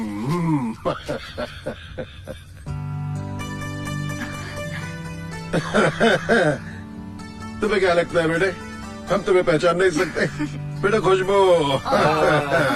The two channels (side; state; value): both; identical; correlation 1.00